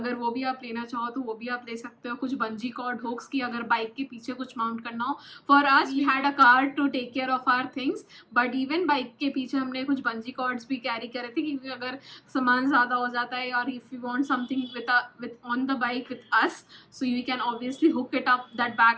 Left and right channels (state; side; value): identical; both; correlation 1.00